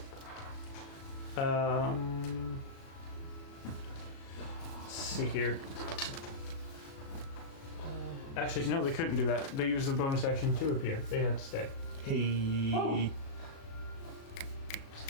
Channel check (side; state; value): right; late; 37 ms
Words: Let's see here. Actually, no, they couldn't do that. They used the bonus action to appear. They had to stay. Hey.